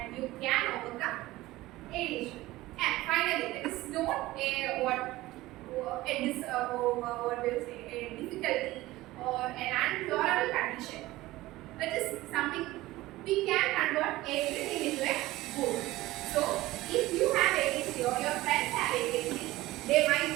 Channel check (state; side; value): quieter; left; 17.9 dB